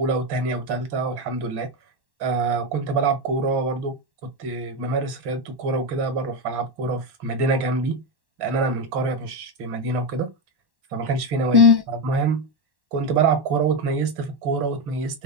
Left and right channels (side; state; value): left; late; 1.1 ms